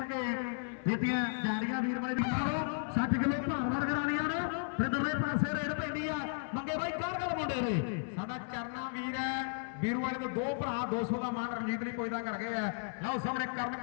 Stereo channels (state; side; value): silent; right; 55 dB below the other